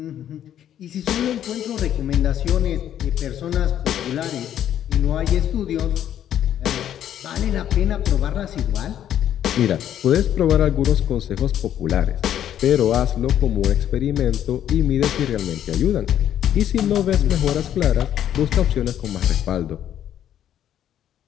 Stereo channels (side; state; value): right; quieter; 10.6 dB